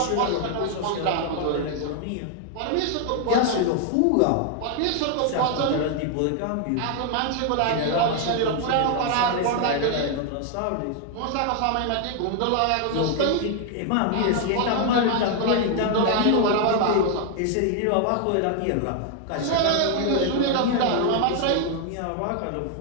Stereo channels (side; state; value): both; different; correlation 0.00